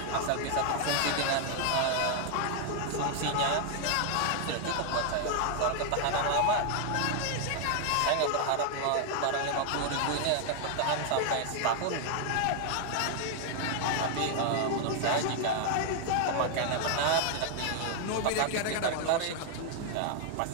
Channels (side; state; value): both; different; correlation 0.00